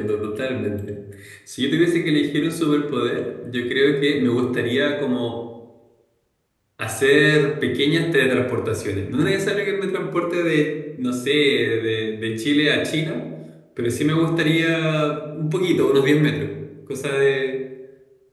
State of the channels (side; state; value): both; identical; correlation 1.00